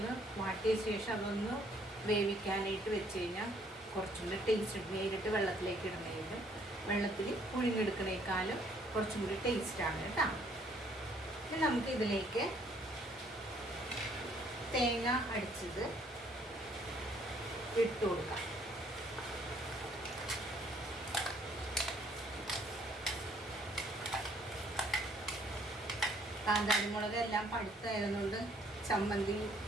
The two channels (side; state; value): both; normal; correlation 0.64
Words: വാട്ടിയ ശേഷം അതൊന്ന് വേവിക്കാനായിട്ട് വെച്ച് കഴിഞ്ഞാൽ കുറച്ചും കൂടി ടേസ്റ്റ്. നേരിട്ട് വെള്ളത്തിലേക്ക് ഇടുന്നതിനും വെള്ളത്തിൽ പുഴുങ്ങിയെടുക്കുന്നതിനേക്കാളും കുറച്ചും കൂടി ടേസ്റ്റാണ് കേട്ടോ. ഇനി നമുക്ക് ഇതിലേക്ക് തേങ്ങ അടിച്ചത് ഇട്ട് കൊടുക്കാം. കാന്താരിമുളക് എല്ലാം പഴുത്തായതുകൊണ്ട് ചമ്മന്തി